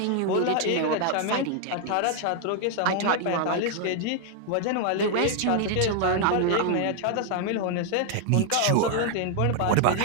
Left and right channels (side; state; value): both; different; correlation 0.00